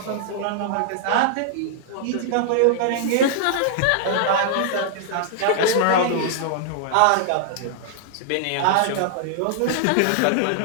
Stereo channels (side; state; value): both; different; correlation -0.01